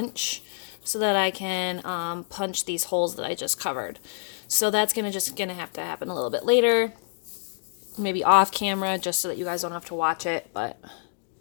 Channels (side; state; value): right; silent; digital silence